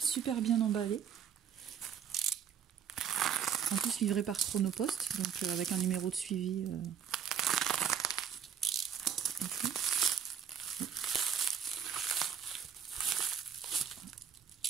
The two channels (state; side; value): quieter; left; 8.0 dB